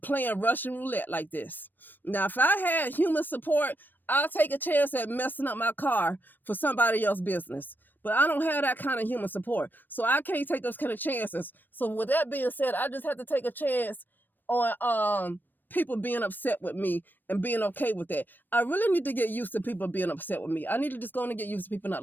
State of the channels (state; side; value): late; right; 0.092 ms